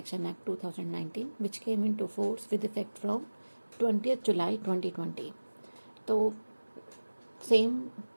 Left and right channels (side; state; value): both; inverted; correlation -1.00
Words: act 2019 which came into force with effect from 20 July 2020। तो same